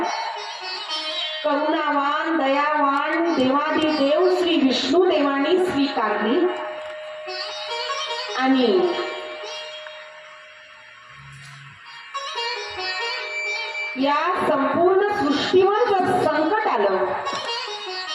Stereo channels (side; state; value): both; identical; correlation 1.00